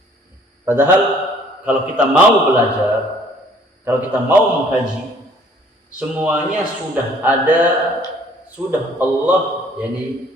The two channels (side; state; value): both; normal; correlation 0.58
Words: Padahal kalau kita mau belajar, kalau kita mau mengkaji, semuanya sudah ada, sudah Allah yakni